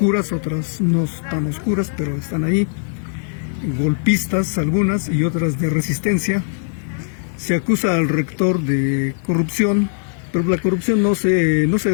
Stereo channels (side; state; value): right; silent; 58 dB below the other